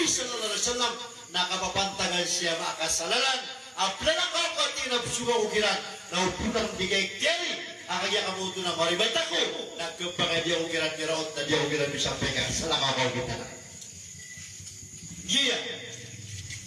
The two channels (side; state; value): both; identical; correlation 1.00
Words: sallallahu alaihi wasallam, nakapapantagan siya makasalalan, aplanang kakati na suga ukiran, na upunang bigay kiri, akagya kamuto na maribata ko, nagkapagay di ako kiran kiraot na di ako kiran bisampay ka, salakaw kita na. Giya.